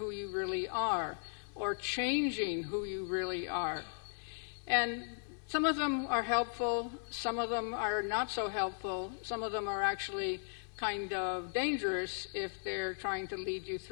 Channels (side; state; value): right; silent; digital silence